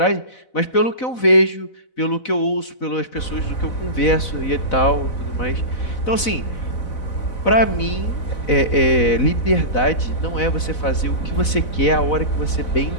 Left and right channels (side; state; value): right; late; 4.0 ms